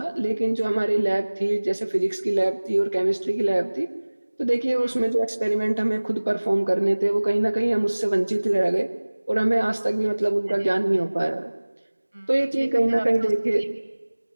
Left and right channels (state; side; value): inverted; both; correlation -1.00